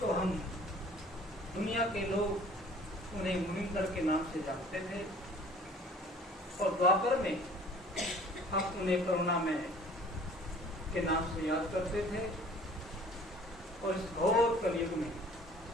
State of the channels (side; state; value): both; normal; correlation 0.50